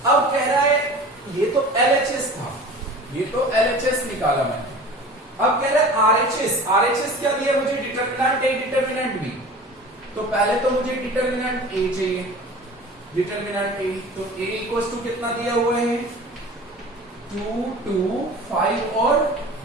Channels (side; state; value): both; normal; correlation 0.39